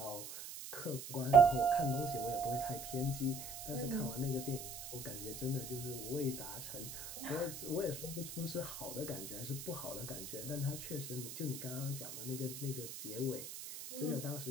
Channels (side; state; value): right; noise; hiss, 9 dB below the sound